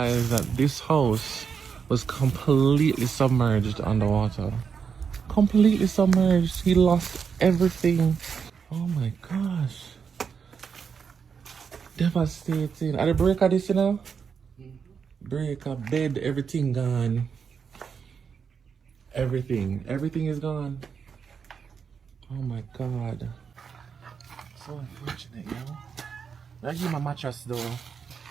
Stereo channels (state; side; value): quieter; left; 6.4 dB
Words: that this house was completely submerged underwater. Completely submerged. He lost everything. Oh my gosh. Devastating. Are the breaker this, you know? Breaker, bed, everything gone. Everything is gone. Oh my god. So unfortunate, yo. I give my mattress though.